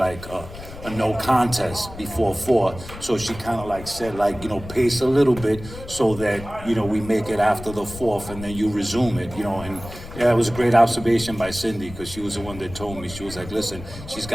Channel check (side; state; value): left; noise; rumble, 13 dB below the sound